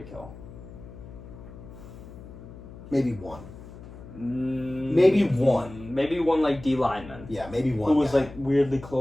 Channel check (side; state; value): left; noise; hum, 16 dB below the sound